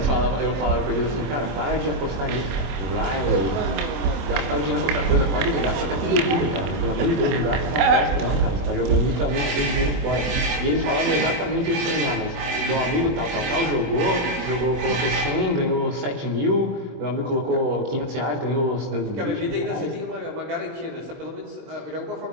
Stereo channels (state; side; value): late; left; 24 ms